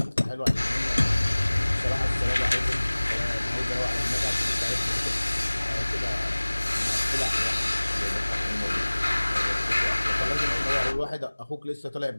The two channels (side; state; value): both; inverted; correlation -1.00